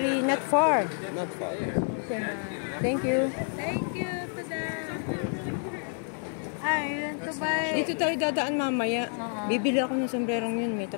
not far. Not far. Thank you. Thank you for that. I want to buy. Dito tayo dadaan mamaya. Bibili ako ng sombrerong yun. May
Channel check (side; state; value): right; silent; 59 dB below the other